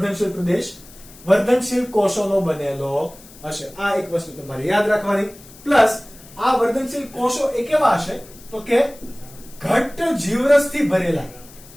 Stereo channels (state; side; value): noise; left; hiss, 21 dB below the sound